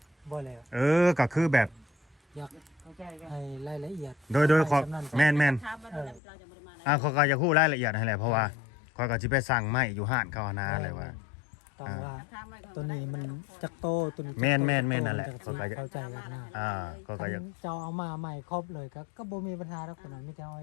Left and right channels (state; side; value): drops out; right; at 6.2 s